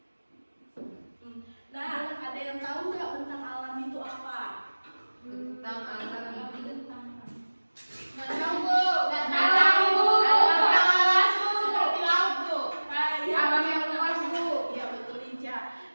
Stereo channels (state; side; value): inverted; both; correlation -1.00